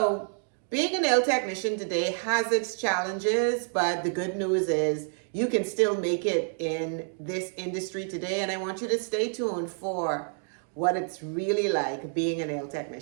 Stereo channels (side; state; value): left; silent; 59 dB below the other